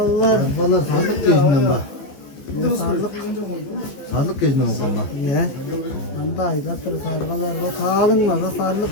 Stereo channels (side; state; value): right; late; 14 ms